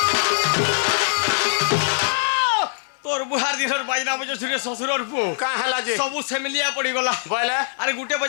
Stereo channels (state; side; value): silent; right; 64 dB below the other